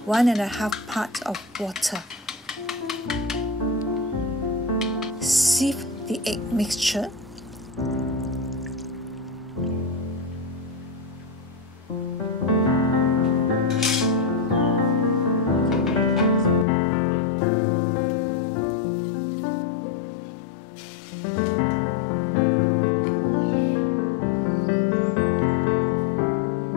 1.5 part of water. Sieve the egg mixture.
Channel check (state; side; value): drops out; right; at 16.7 s